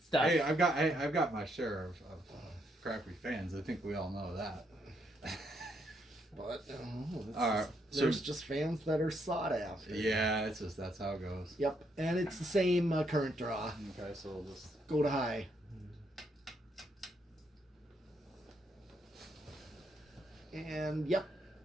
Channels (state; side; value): normal; both; correlation 0.75